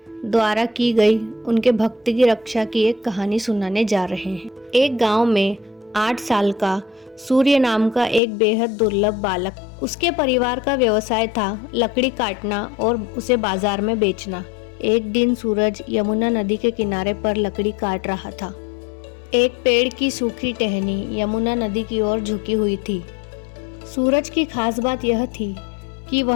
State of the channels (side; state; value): right; drops out; at 8.2 s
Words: द्वारा की गई उनके भक्त की रक्षा की एक कहानी सुनाने जा रहे हैं। एक गांव में 8 साल का सूर्य नाम का एक बेहद दुर्लभ बालक, उसके परिवार का व्यवसाय था लकड़ी काटना और उसे बाजार में बेचना। एक दिन सूरज यमुना नदी के किनारे पर लकड़ी काट रहा था। एक पेड़ की सूखी टहनी यमुना नदी की ओर झुकी हुई थी। सूरज की खास बात यह थी कि